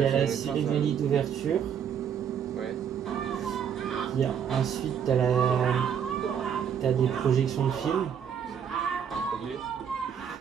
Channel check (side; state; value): left; quieter; 8.1 dB